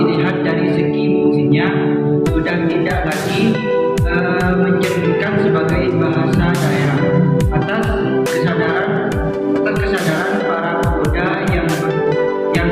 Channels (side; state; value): both; identical; correlation 1.00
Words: dari segi fungsinya sudah tidak lagi mencerminkan sebagai bahasa daerah atas kesadaran para pemuda yang